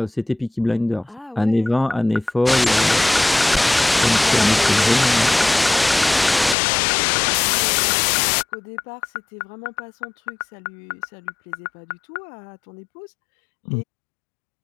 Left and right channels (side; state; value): right; drops out; at 6.6 s